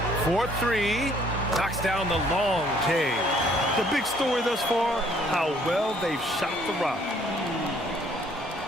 4-3. Knocks down the long K. The big story thus far, how well they've shot the rock.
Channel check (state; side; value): normal; both; correlation 0.62